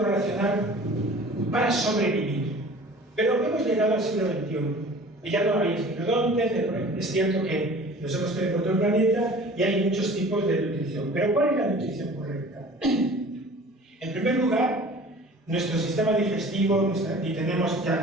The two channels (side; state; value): both; normal; correlation 0.44